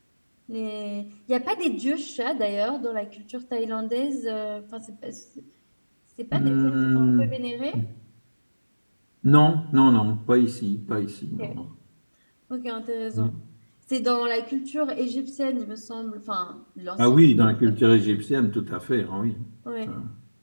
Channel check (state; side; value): inverted; both; correlation -1.00